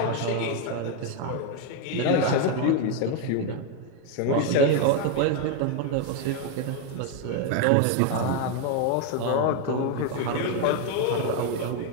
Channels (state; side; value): different; both; correlation 0.01